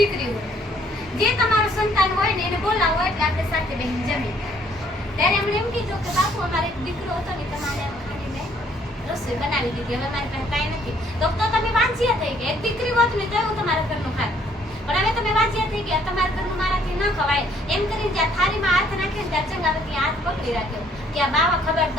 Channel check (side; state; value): both; normal; correlation 0.64